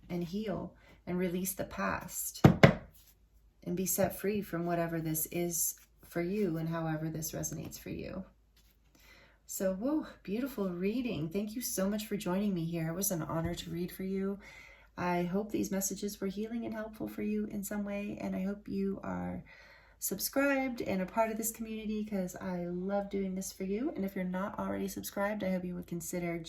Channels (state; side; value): identical; both; correlation 1.00